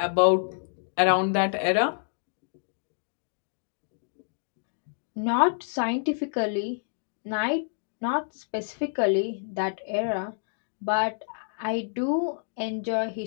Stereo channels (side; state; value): right; silent; digital silence